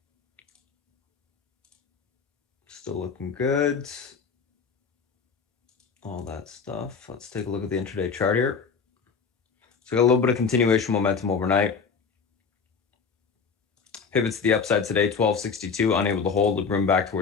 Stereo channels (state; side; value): quieter; right; 5.6 dB